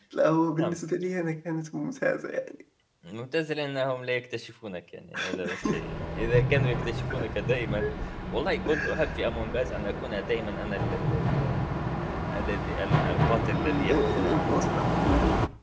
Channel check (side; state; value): both; identical; correlation 1.00